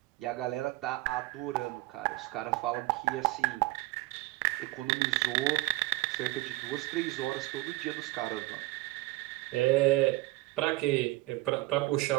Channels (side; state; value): left; quieter; 20.4 dB